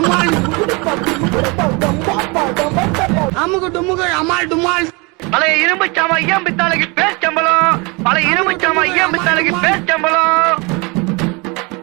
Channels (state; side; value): quieter; left; 28.6 dB